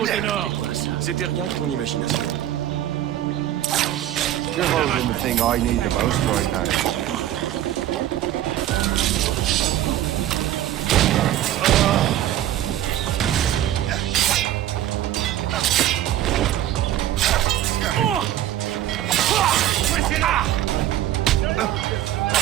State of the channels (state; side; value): quieter; left; 12.7 dB